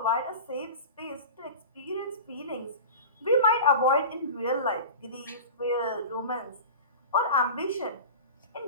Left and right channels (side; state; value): both; inverted; correlation -0.32